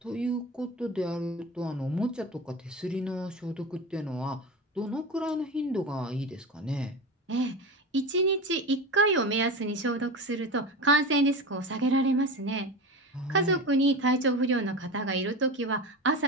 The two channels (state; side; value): normal; both; correlation 0.26